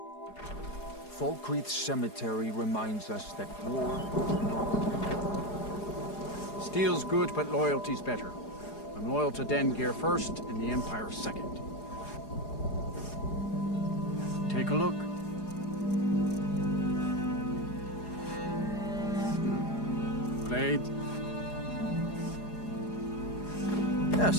Falkreath Cemetery reminds us that war is not... Steel's good, but loyalty's better. I'm loyal to Dengeir first, and the Empire second. Take a look. Blade?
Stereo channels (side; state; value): right; late; 4.8 ms